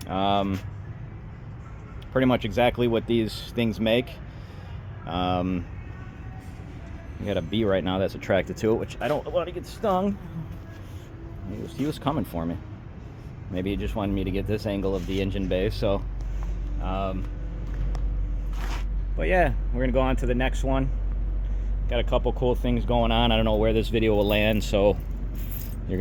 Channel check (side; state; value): both; identical; correlation 1.00